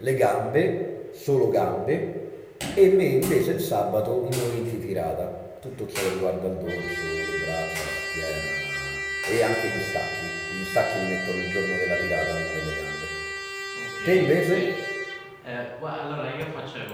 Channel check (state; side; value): identical; both; correlation 1.00